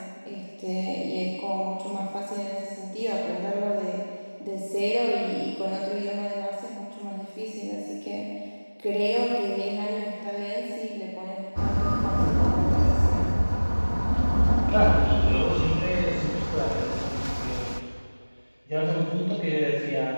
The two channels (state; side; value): inverted; both; correlation -1.00